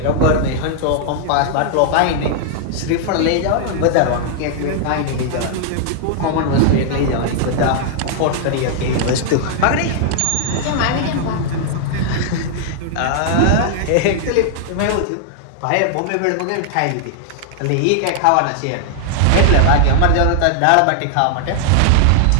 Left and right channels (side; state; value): both; different; correlation -0.01